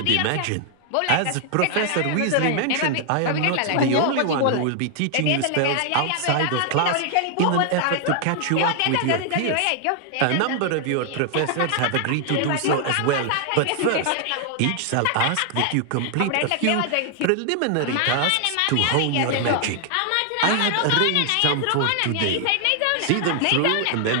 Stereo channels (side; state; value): both; different; correlation 0.00